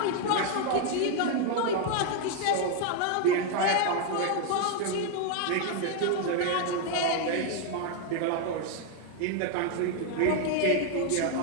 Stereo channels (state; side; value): different; both; correlation 0.00